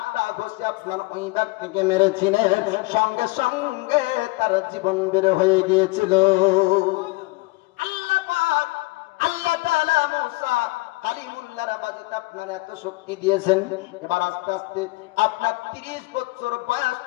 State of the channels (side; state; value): right; quieter; 23.6 dB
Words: ঘুষি আপনার ওই ব্যক্তিকে মেরেছিলেন, সঙ্গে সঙ্গে তার জীবন বের হয়ে গিয়েছিল। আল্লাহ তাআলা মুসা কালিমুল্লাহর বাজতে আপনার এত শক্তি দিয়েছেন। এবার আস্তে আস্তে আপনার 30 বছর বয়স